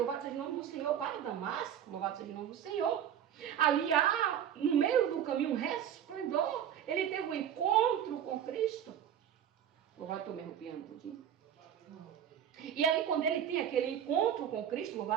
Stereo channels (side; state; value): left; quieter; 9.6 dB